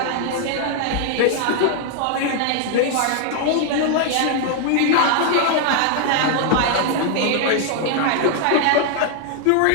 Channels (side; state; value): both; different; correlation 0.00